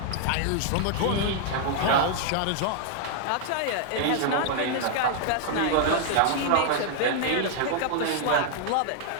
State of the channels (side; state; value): both; different; correlation -0.01